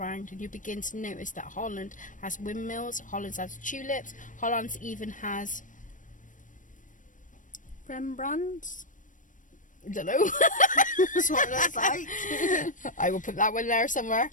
and you begin to notice that Holland has windmills, Holland has tulips, Holland even has Rembrandts? I don't know. That's what it looks like. I will put that one there somewhere.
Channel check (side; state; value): right; late; 0.38 ms